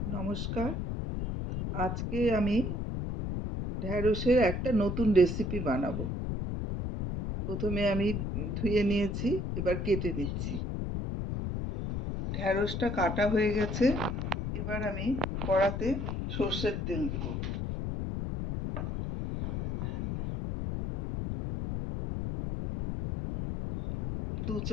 নমস্কার। আজকে আমি ঢ্যাঁড়সের একটা নতুন রেসিপি বানাবো। প্রথমে আমি ধুয়ে নিয়েছি, এবার কেটে নিচ্ছি। ঢ্যাঁড়সটা কাটা হয়ে গেছে। এবার আমি কড়াতে সর্ষের তেল দেব। 2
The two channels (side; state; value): left; noise; rumble, 2 dB below the sound